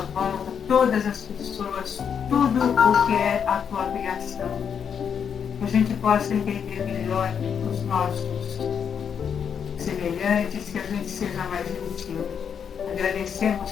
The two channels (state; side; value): quieter; right; 7.4 dB